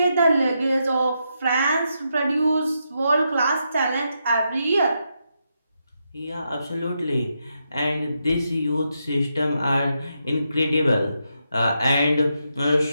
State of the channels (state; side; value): inverted; both; correlation -0.83